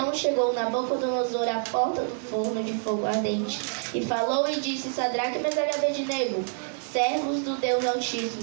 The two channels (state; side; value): silent; left; 60 dB below the other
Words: chegou Nabucodonosor à porta do forno de fogo ardente, e falou e disse: Sadraque, Mesaque e Abednego, servos do Deus